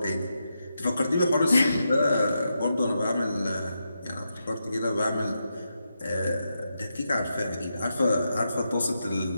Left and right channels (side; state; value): both; inverted; correlation -0.85